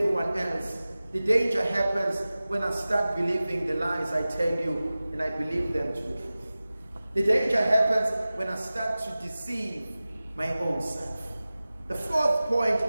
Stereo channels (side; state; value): both; inverted; correlation -0.97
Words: else. The danger happens when I start believing the lies I tell you and I believe them to be true. The danger happens when I start to deceive my own self. The fourth point